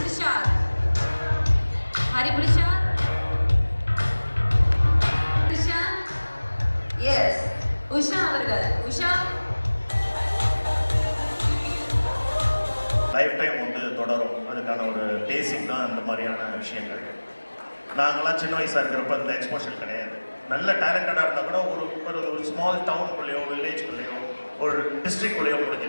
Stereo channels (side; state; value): both; inverted; correlation -1.00